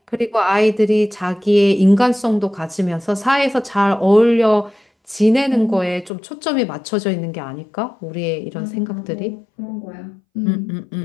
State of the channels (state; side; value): drops out; right; at 6.1 s